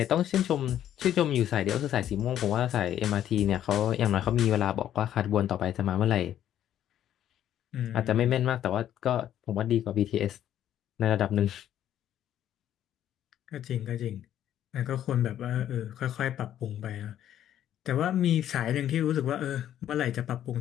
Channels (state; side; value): quieter; right; 11.1 dB